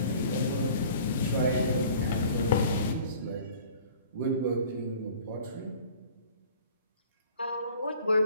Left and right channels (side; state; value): both; inverted; correlation -0.48